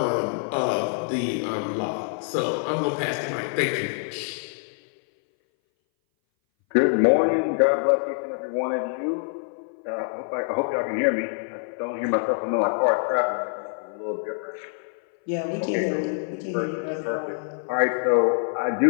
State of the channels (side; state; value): right; silent; 59 dB below the other